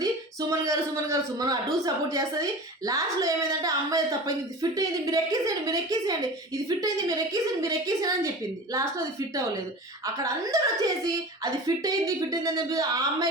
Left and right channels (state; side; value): normal; both; correlation 0.34